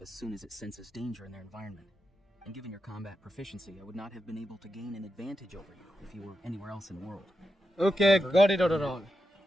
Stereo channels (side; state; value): both; normal; correlation 0.87